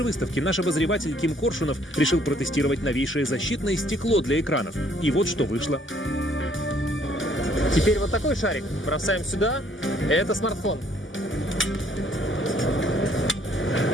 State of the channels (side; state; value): both; normal; correlation 0.63